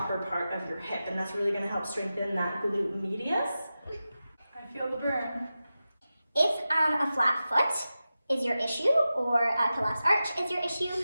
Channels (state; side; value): inverted; both; correlation -0.93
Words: part of your hip, and that's really going to help strengthen that glute medius. I feel the burn. If a flat foot is your issue or a collapsed arch is your issue,